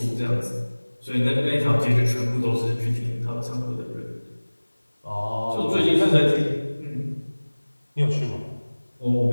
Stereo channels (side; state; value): both; inverted; correlation -1.00